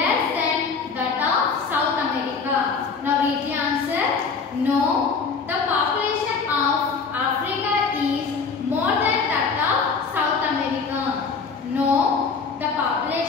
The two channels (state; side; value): quieter; right; 5.1 dB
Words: than that of South America? Now read the answer. No. The population of Africa is more than that of South America. No. The